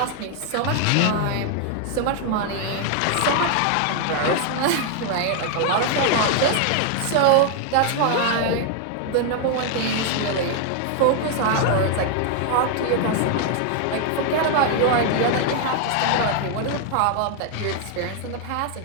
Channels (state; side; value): different; both; correlation 0.00